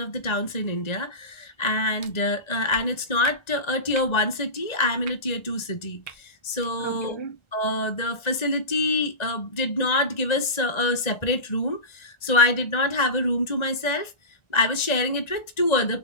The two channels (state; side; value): late; right; 1.4 ms